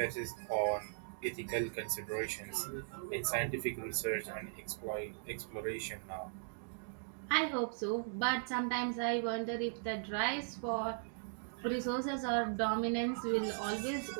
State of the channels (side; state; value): left; silent; digital silence